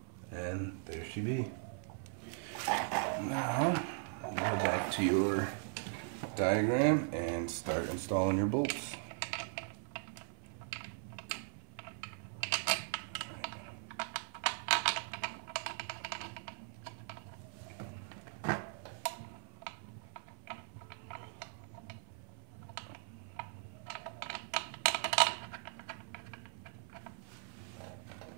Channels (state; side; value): silent; left; 51 dB below the other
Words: and there she be. Now go back to your diagram and start installing your bolts.